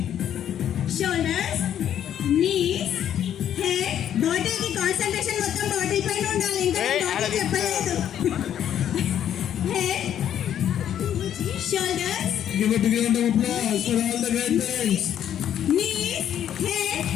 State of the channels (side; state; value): right; quieter; 10.1 dB